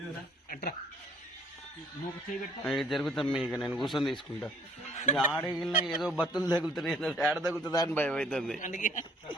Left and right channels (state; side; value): normal; both; correlation 0.61